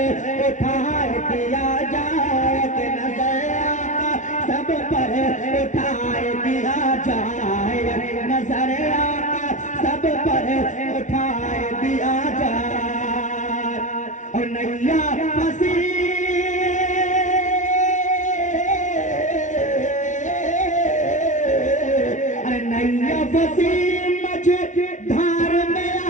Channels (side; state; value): right; late; 0.36 ms